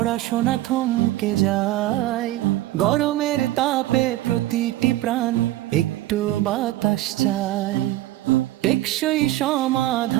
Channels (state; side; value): quieter; left; 15.7 dB